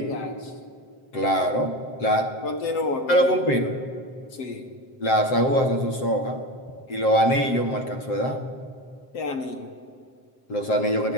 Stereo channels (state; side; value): late; right; 7.6 ms